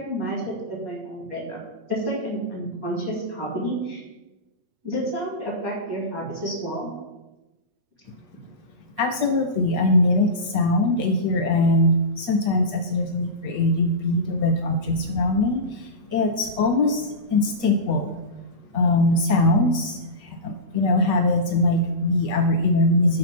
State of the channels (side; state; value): left; late; 8.4 ms